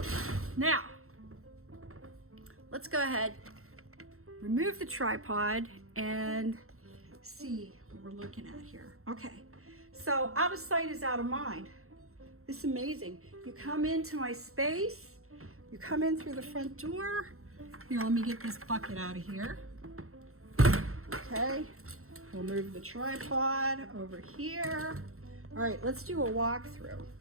Now, let's go ahead, remove the tripod, and see what we're looking at here. Okay, so out of sight is out of mind. This is amazing. You come into my space, you come in through the front door. Here, let me get this bucket out of here. Okay, we'll move the tripod over here. All right, let's do a walkthrough.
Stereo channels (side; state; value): left; late; 0.63 ms